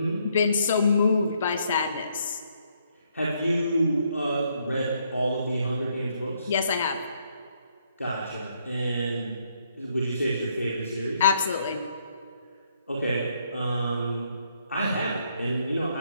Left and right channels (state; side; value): inverted; both; correlation -0.72